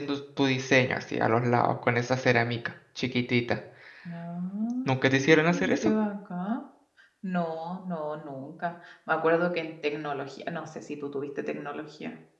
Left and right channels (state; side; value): identical; both; correlation 1.00